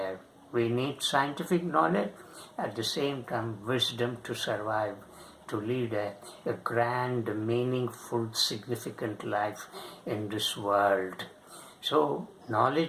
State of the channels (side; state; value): both; identical; correlation 1.00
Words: We need scientific knowledge, at the same time wisdom to survive, to lead a grand, meaningful, significant life in this world. So